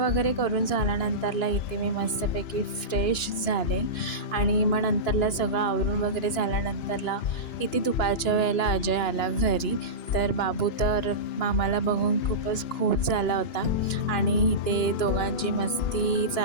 करून झाल्यानंतरला इथे मी मस्तपैकी फ्रेश झाले आणि मग नंतरला सगळं आवरून वगैरे झाल्यानंतरला इथे दुपारच्या वेळेला अजय आला घरी. तर बाबू तर मामाला बघून खूपच खुश झाला होता आणि इथे दोघांची मस्ती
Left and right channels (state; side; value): late; right; 2.9 ms